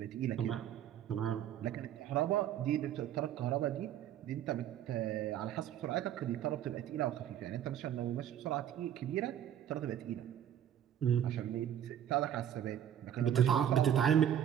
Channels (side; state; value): left; quieter; 10.3 dB